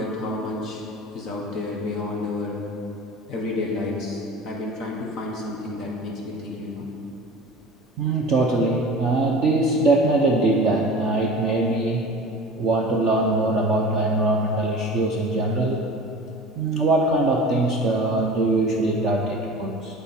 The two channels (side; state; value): both; normal; correlation 0.38